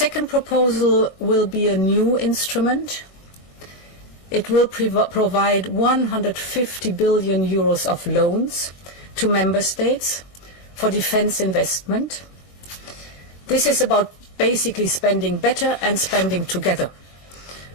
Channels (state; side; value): late; right; 21 ms